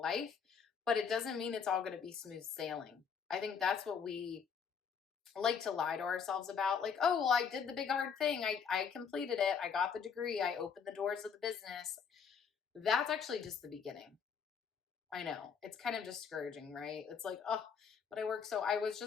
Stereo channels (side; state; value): right; quieter; 6.6 dB